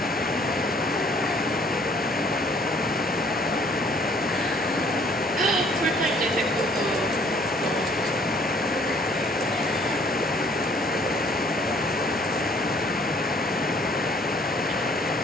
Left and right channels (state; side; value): normal; both; correlation 0.60